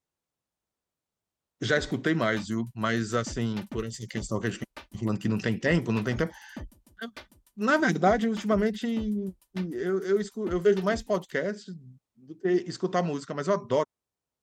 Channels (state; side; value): identical; both; correlation 1.00